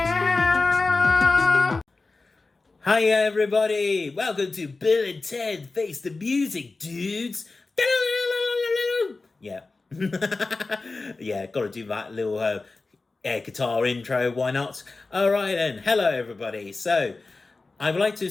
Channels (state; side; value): quieter; right; 3.6 dB